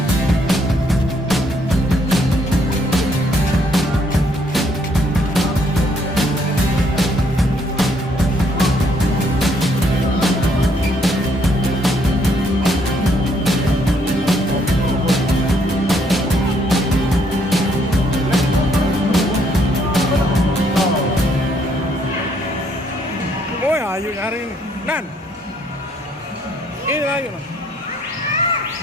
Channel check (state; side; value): normal; both; correlation 0.69